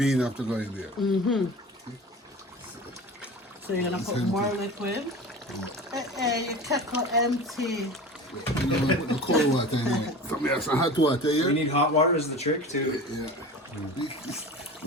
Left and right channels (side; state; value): both; normal; correlation 0.35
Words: have to go in there. So you're gonna put more liquid. Your kettle empty. You know, I put the cold water in it. Some have some hot water We here. need hot water is the trick too. Yeah.